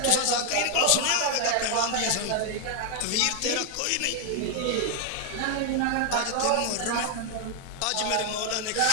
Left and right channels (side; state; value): both; different; correlation 0.00